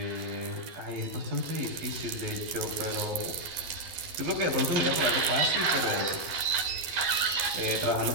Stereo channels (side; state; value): left; late; 12 ms